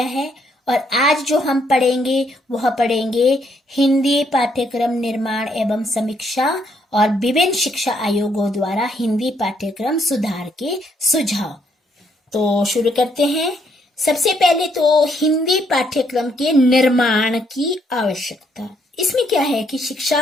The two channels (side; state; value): both; normal; correlation 0.72